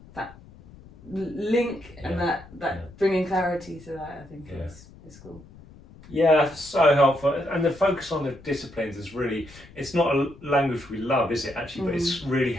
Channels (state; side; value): noise; left; rumble, 21 dB below the sound